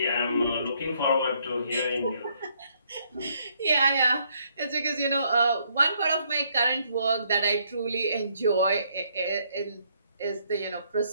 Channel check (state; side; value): inverted; both; correlation -0.70